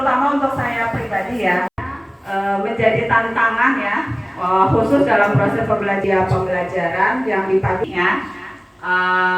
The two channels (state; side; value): identical; both; correlation 1.00